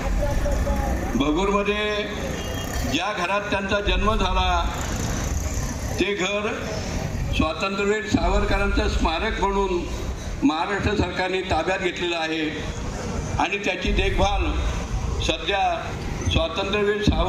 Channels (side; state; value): both; identical; correlation 1.00